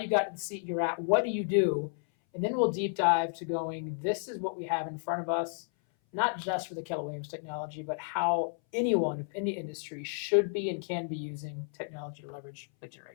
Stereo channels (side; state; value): right; silent; 56 dB below the other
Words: got to the seat you're at, what do you do, and then we'll deep dive to going, this is what we have in front of us, not just for the Keller Williams technology, but how anyone of any industry should be and can be using technology to leverage lead